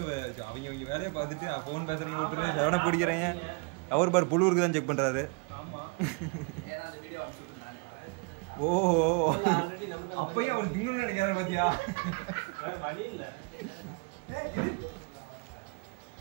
அவங்க வேலையை பார்த்துட்டு போன் பேசுறீங்க, ஒருத்தர் செவனை பிடிக்கிறீங்க. அவர் பாரு புழுவுக்கு தான் செக் பண்றாரு. ஓஹோ, அப்பயும் அவர் திங்கணும்னு நினைக்கிறாரு பாத்தியா?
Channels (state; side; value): quieter; left; 31.5 dB